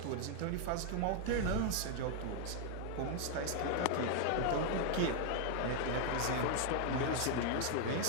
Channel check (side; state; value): both; different; correlation 0.00